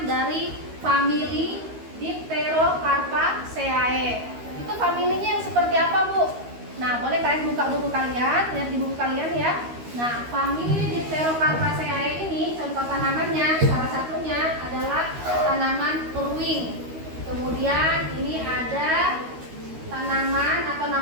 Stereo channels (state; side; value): late; left; 13 ms